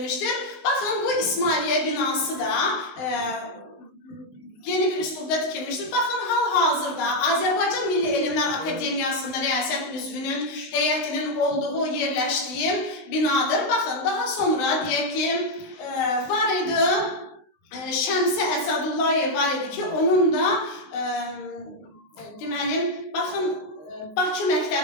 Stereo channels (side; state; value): right; late; 19 ms